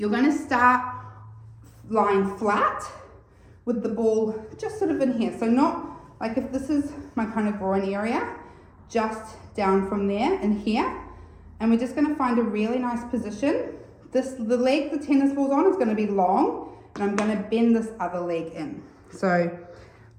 gonna start lying flat with the ball just sort of in here. So not like if this is my kind of groin area, just down from there and here. And we're just gonna find a really nice position. The leg the tennis ball's on is gonna be long, and I'm gonna bend this other leg in. So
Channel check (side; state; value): both; identical; correlation 1.00